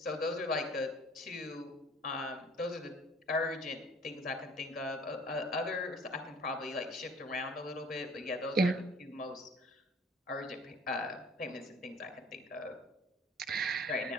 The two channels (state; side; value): normal; both; correlation 0.52